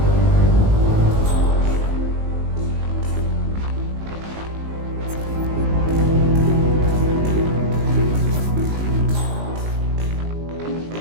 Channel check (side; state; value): left; late; 19 ms